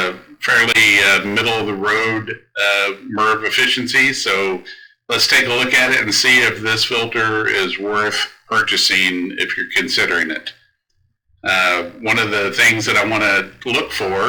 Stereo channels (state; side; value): identical; both; correlation 1.00